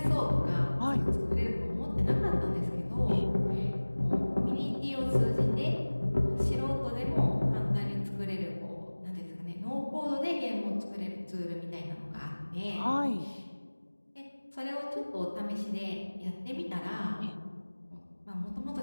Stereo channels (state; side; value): inverted; both; correlation -1.00